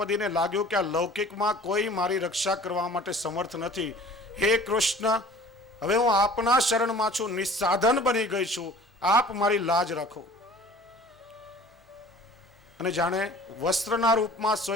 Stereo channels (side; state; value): both; normal; correlation 0.47